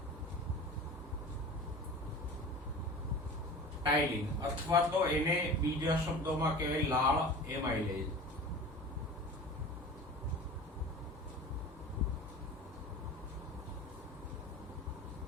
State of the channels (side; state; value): both; normal; correlation 0.36